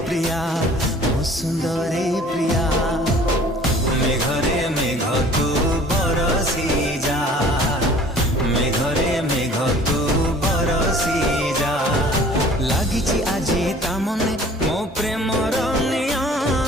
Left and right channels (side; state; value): both; normal; correlation 0.50